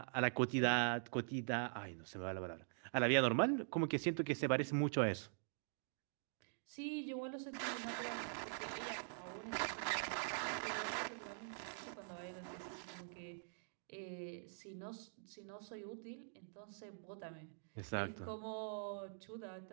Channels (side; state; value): left; silent; digital silence